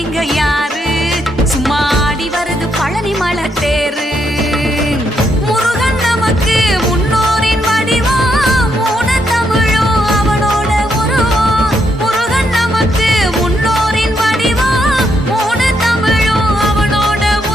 இங்க யாரு, சும்மா ஆடி வருது பழனிமலை தேரு. முருகன் நமக்கு முன்னோரின் வடிவம், மூணு தமிழும் அவனோட உருவம். முருகன் நமக்கு முன்னோரின் வடிவம், மூணு தமிழும் அவனோட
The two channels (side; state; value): both; normal; correlation 0.77